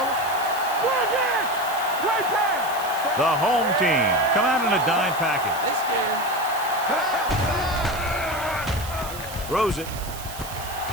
Go again. Play pass. The home team come out in a dime package. They scared. Throws it.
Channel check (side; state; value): right; noise; hiss, 13 dB below the sound